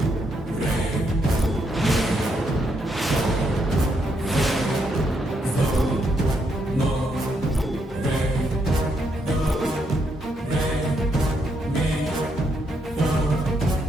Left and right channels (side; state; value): both; normal; correlation 0.76